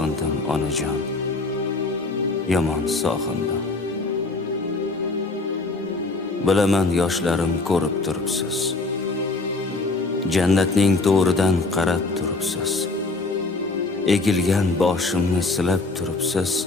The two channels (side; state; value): right; quieter; 3.4 dB